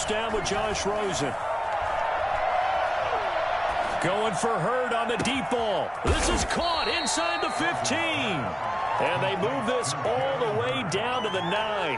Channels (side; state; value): both; identical; correlation 1.00